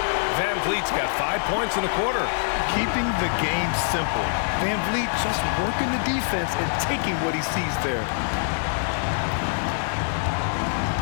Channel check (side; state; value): right; silent; 62 dB below the other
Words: Van Vliet's got 5 points in the quarter. Keeping the game simple. Van Vliet just working the defense and taking what he sees there.